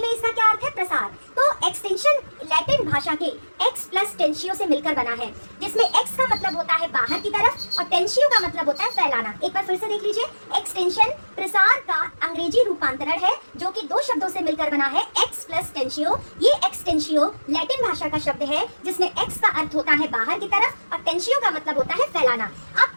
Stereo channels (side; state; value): both; inverted; correlation -1.00